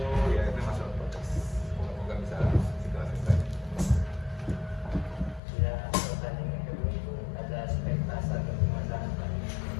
ya itu masih on progress. Semoga bisa segera selesai. Ya, pertanyaan yang kedua itu ada aspek pasar dan pemasaran Pak.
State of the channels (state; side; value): drops out; right; at 5.4 s